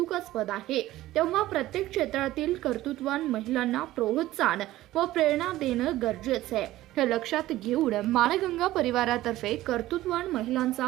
आहे। तेव्हा प्रत्येक क्षेत्रातील कर्तृत्ववान महिलांना प्रोत्साहन व प्रेरणा देणं गरजेचं आहे। हे लक्षात घेऊन माणगंगा परिवारातर्फे कर्तृत्ववान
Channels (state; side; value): quieter; left; 15.8 dB